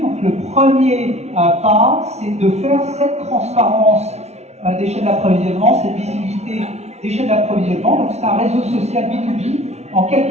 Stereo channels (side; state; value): left; late; 0.31 ms